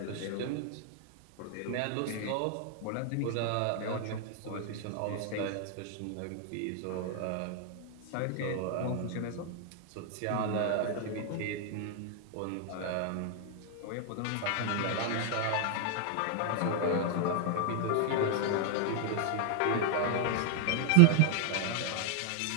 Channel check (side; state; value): both; different; correlation 0.00